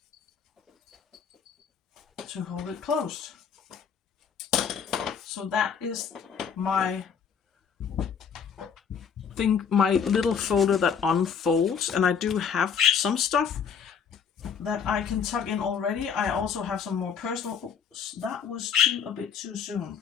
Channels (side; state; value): right; quieter; 7.0 dB